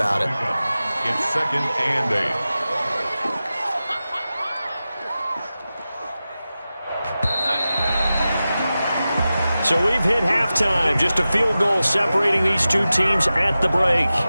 it. It's 2nd and 8. So we've hit halftime. Just a field goal separating these two teams at the break.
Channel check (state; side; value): inverted; both; correlation -0.94